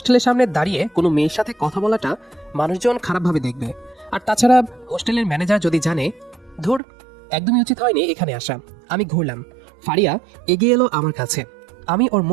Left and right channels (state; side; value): drops out; left; at 6.8 s